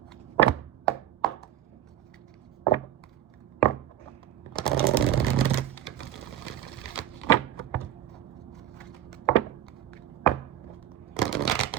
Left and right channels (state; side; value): quieter; left; 11.6 dB